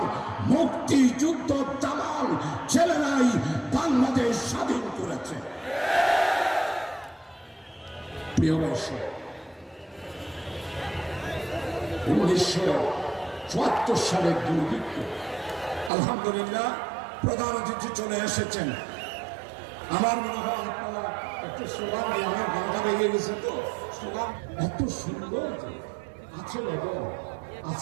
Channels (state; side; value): drops out; left; at 15.9 s